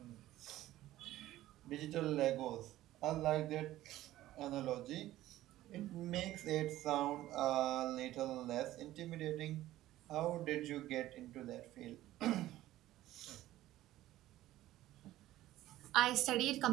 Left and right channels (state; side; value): quieter; left; 14.9 dB